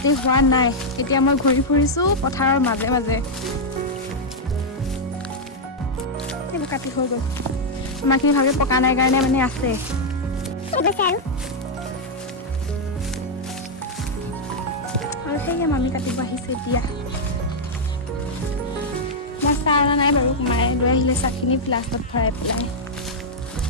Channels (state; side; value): normal; both; correlation -0.04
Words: হোৱা নাই। এতিয়া মই ঘূৰি ফুৰিছোঁ পথাৰৰ মাজে মাজে। এইবোৰ কাটি হৈ গ'ল আমাৰখিনি ভালকৈ পকা নাই কাৰণে মানে আছে। আৰু সেয়ে মামি কাটিব আহিছে এতিয়া। মই চাহ অনা নাই বাৰু মায়ে লৈ আহিলে চাহখিনি ফ্লাস্কত ভৰাই পেলাই।